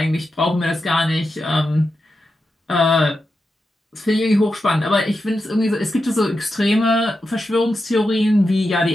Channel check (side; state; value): both; normal; correlation 0.89